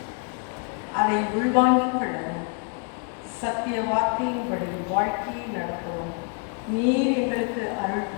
அதை உள்வாங்கிக் கொள்ளவும் சத்திய வார்த்தையின்படி வாழ்க்கையை நடத்தவும் நீர் எங்களுக்கு அருள்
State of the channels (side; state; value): right; quieter; 37.5 dB